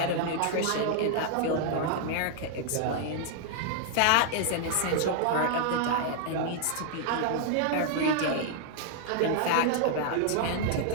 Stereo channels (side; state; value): both; different; correlation -0.01